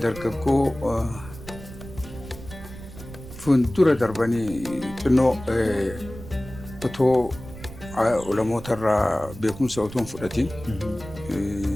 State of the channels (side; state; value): right; noise; rumble, 14 dB below the sound